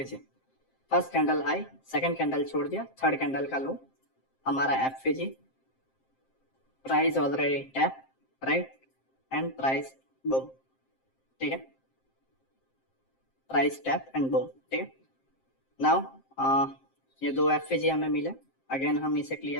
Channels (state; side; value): late; right; 7.6 ms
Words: First candle high, second candle छोड़ दिया, थर्ड कैंडल का लो, हमारा FVG. Price already tap, right, and price boom, ठीक है, प्राइस टैप एंड बूम, ठीक है। नाउ ये दो एफपीजी हमें मिले, अगेन हम इसे